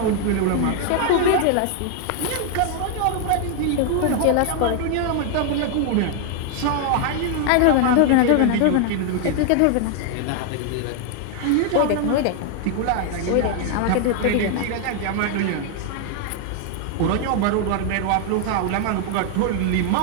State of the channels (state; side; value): different; both; correlation 0.00